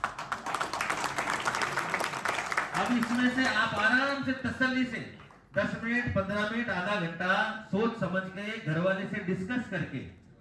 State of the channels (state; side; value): identical; both; correlation 1.00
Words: अब इसमें से आप आराम से तसल्ली से 10 मिनट, 15 मिनट, आधा घंटा सोच समझ के घर वाले से डिस्कस करके